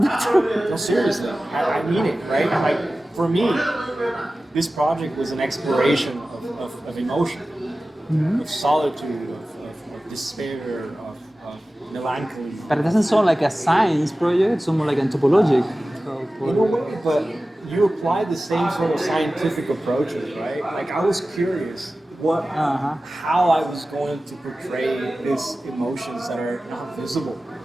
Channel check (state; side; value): normal; both; correlation 0.96